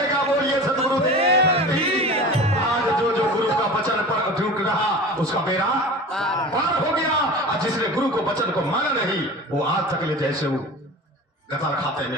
बोलिए सतगुरुदेव आज जो गुरु का वचन पर अटूट रहा उसका बेड़ा पार हो गया और जिसने गुरु को वचन को माना नहीं वो आज तक ले जैसे वो गताल खाते में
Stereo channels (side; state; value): both; normal; correlation 0.35